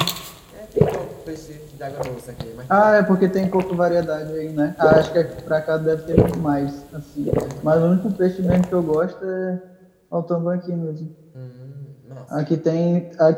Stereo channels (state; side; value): identical; both; correlation 1.00